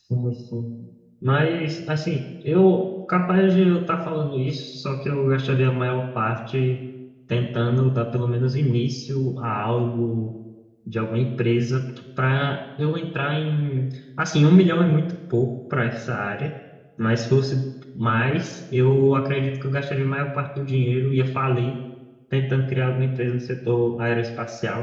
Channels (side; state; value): both; identical; correlation 1.00